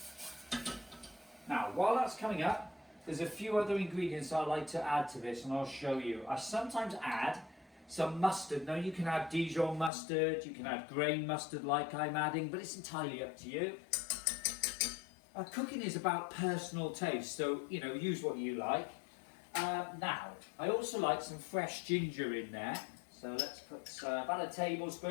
Now, while that's coming up, there's a few other ingredients I like to add to this, and I'll show you. I sometimes add some mustard. Now, you can add Dijon mustard, you can add grain mustard like I'm adding, but it's entirely up to you. Cooking is about personal taste, so use what you like. Now, I also like some fresh ginger in there, so let's put about a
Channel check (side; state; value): right; drops out; at 9.9 s